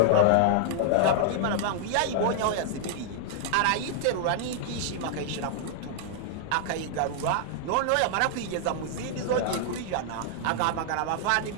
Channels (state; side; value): different; both; correlation -0.01